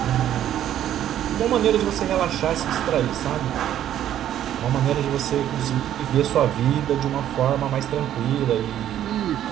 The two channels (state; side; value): quieter; left; 11.3 dB